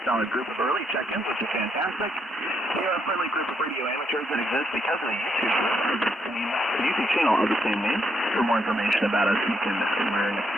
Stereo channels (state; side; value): normal; both; correlation 0.76